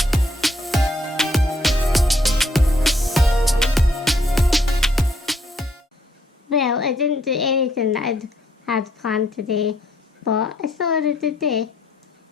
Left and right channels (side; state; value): both; normal; correlation 0.69